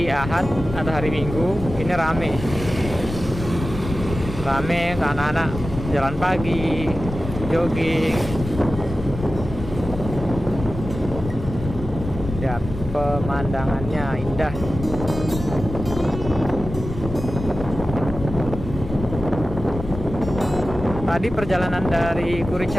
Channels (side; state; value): left; noise; rumble, 8 dB below the sound